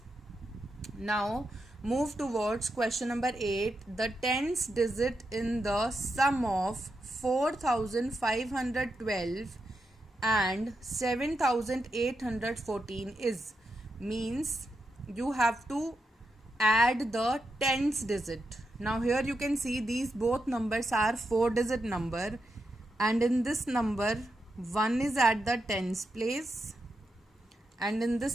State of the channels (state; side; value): normal; both; correlation 0.85